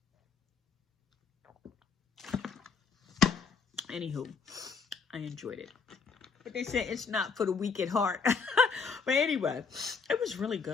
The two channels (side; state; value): right; quieter; 5.5 dB